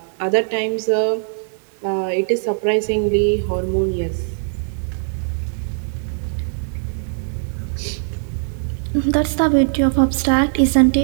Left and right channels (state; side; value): silent; left; digital silence